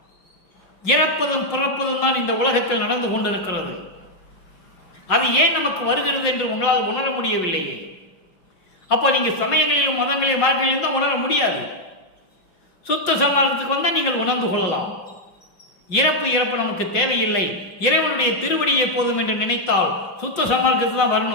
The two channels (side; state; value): right; late; 5.5 ms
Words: இறப்பதும் பிறப்பதும் தான் இந்த உலகத்தில் நடந்து கொண்டிருக்கிறது. அது ஏன் நமக்கு வருகிறது என்று உங்களால் உணர முடியவில்லையே. அப்போ நீங்க சமயங்களிலும் மதங்களிலும் மார்க்கங்களிலும் தான் உணர முடியாது. சுத்த சன்மார்க்கத்துக்கு வந்தால் நீங்கள் உணர்ந்து கொள்ளலாம். இறப்பு நமக்கு தேவையில்லை, இறைவனுடைய திருவடியை போதும் என்று நினைத்தால் சுத்த சன்மார்க்கத்துக்கு தான்